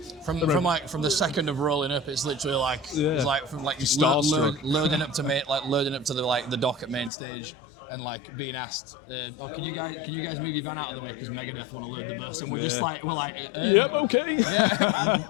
From the second of rolling up, it's literally it's from you loading up to loading up to the dock at main stage, and being asked, can you guys move your van out of the way because Megadeth want to load the bus, and we're just yep, okay, yeah.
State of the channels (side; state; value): right; drops out; at 7.1 s